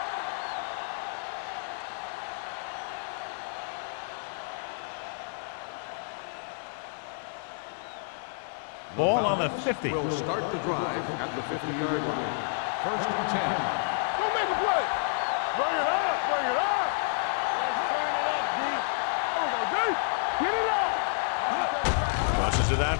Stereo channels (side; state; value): right; silent; digital silence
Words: Ball on the 50. Will start the drive at the 50-yard line. First and 10. Go make a play. Bring it up. Bring it up. Let's turn it up, D. There we go, D. Get it up. Crosses it out